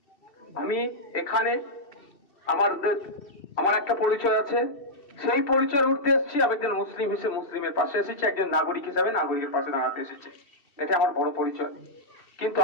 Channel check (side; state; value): right; late; 2.7 ms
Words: আমি এখানে আমার একটা পরিচয় আছে, সেই পরিচয়ের উঠতে এসেছি। আমি একজন মুসলিম হিসেবে মুসলিমের পাশে এসেছি, একজন নাগরিক হিসেবে নাগরিকের পাশে দাঁড়াতে এসেছি। এটা আমার বড় পরিচয়। কিন্তু